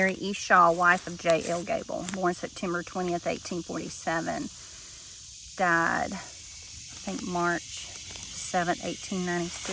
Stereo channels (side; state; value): both; identical; correlation 1.00